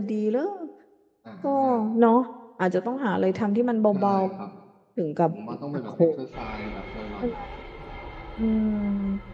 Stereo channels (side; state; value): both; identical; correlation 1.00